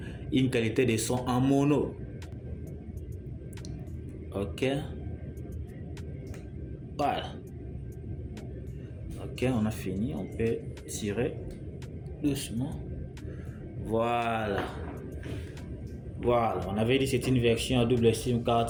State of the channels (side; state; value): both; identical; correlation 1.00